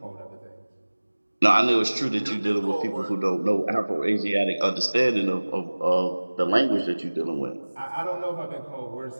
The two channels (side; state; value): both; inverted; correlation -1.00